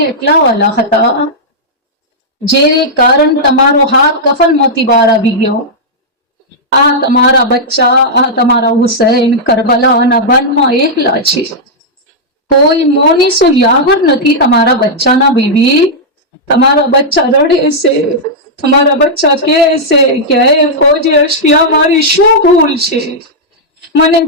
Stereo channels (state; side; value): normal; both; correlation -0.08